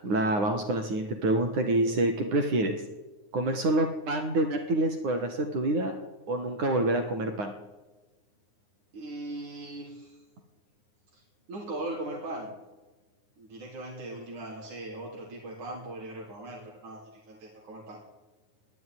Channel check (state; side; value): late; left; 9.6 ms